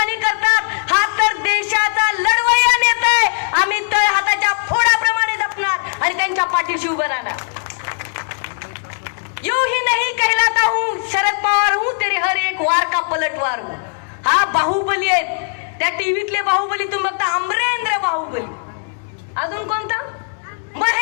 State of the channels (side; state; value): right; silent; digital silence